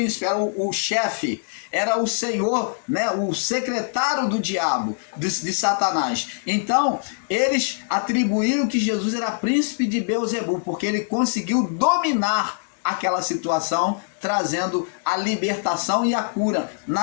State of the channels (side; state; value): right; silent; digital silence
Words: era o chefe, era o senhor, né, o secretário do diabo, de Satanás. Então, eles atribuíram que Jesus era príncipe de Beelzebul, porque ele conseguiu dominar aquela situação, trazendo a libertação e a cura